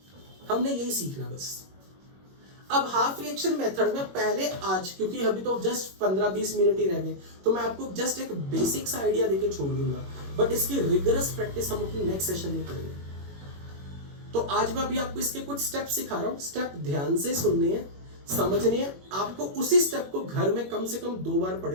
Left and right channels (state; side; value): late; left; 21 ms